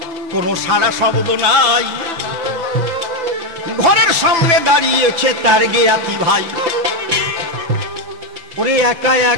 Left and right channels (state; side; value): late; left; 5.9 ms